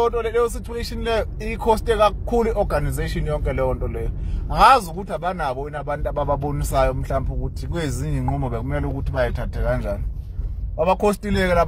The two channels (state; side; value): identical; both; correlation 1.00